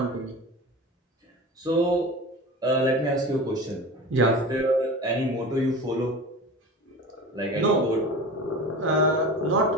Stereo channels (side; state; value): both; normal; correlation 0.33